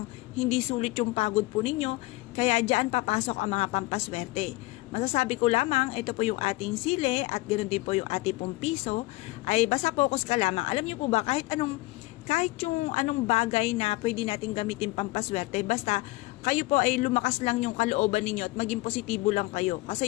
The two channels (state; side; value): quieter; right; 20.8 dB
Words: hindi sulit yung pagod po ninyo, kaya dyan papasok ang mga pampaswerte. Masasabi ko lamang, ito po yung ating sile at ganoon din po yung ating pong piso, ay basta focus ka lamang. Alam niyo po ba, kahit yung anong bagay na pwede natin gamitin pampaswerte, basta kayo po ay lumakas lang yung kalooban ninyo at maging positibo lang kayo.